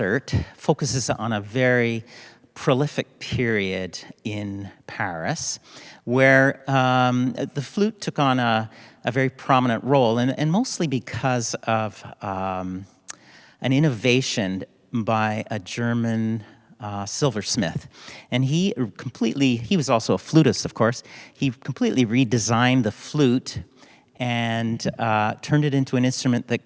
focuses on a very prolific period in Paris where the flute took on a very prominent role, and mostly because of an innovation by a German silversmith. And he was also a flutist, of course. He completely redesigned the flute and turned it into an instrument that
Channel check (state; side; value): identical; both; correlation 1.00